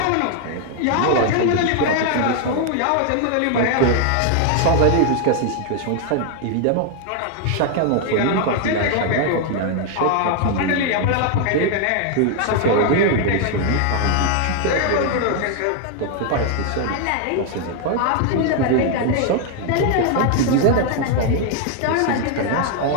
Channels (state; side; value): different; both; correlation 0.00